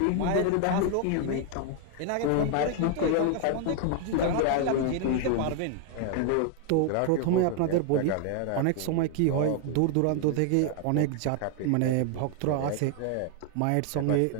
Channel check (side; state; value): both; different; correlation 0.00